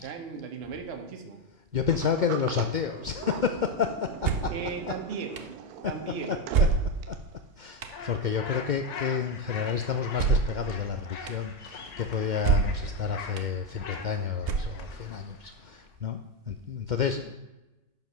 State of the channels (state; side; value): late; left; 2.1 ms